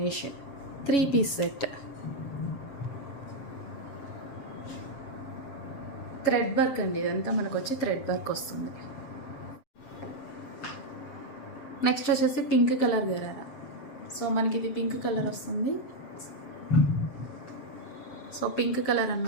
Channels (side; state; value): right; late; 7.3 ms